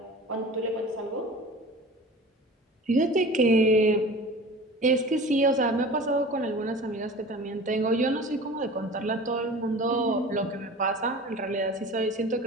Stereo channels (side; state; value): both; normal; correlation 0.39